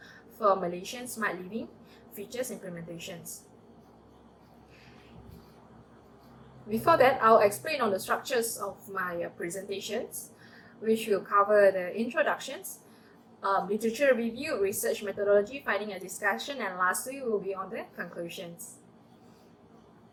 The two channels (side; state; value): both; identical; correlation 1.00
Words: for Malaysian smart living features implementations. Before that, I'll explain on the structures of my presentations, which will cover the introductions, literature review, research methodology, finding a discussion, and lastly will be on the conclusions.